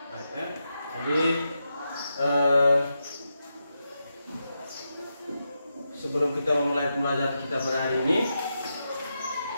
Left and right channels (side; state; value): both; inverted; correlation -0.87